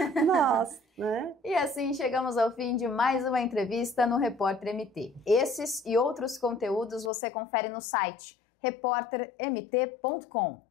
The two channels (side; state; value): right; drops out; at 7.1 s